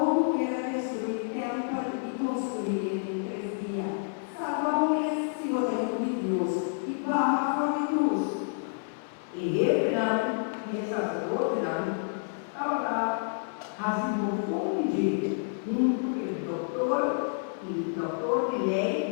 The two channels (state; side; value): silent; right; digital silence